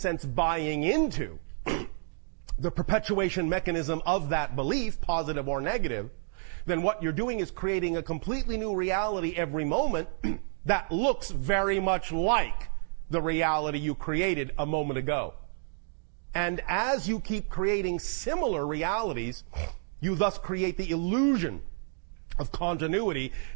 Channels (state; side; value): silent; left; digital silence